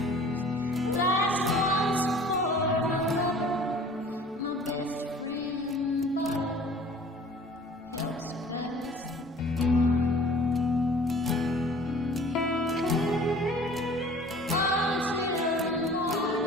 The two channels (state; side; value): normal; both; correlation 0.48